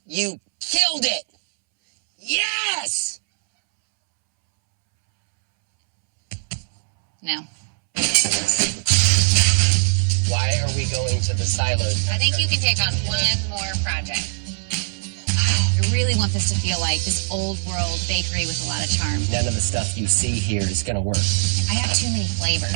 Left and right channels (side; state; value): left; silent; 65 dB below the other